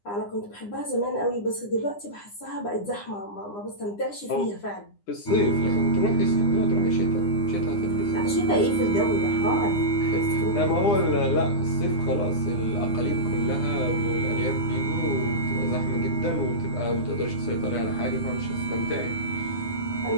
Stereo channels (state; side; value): late; right; 9.8 ms